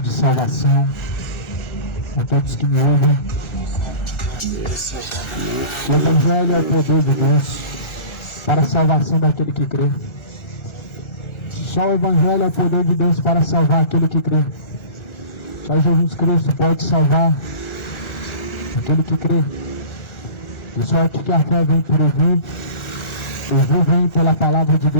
salvação a todos que me ouvem. O Evangelho é o poder de Deus para a salvação daquele que crê. Só o Evangelho é o poder de Deus para salvar aquele que crê. Só Jesus Cristo pode salvar aquele que crê. De sorte que a fé vem por ouvir, ouvir vem pela palavra de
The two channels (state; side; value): late; right; 1.4 ms